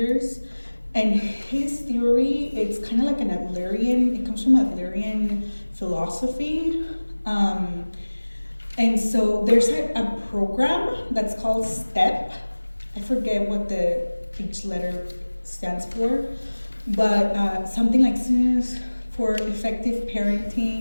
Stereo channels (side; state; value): both; inverted; correlation -1.00